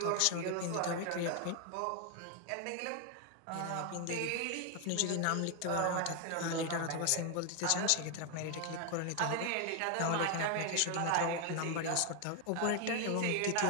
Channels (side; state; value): both; different; correlation 0.01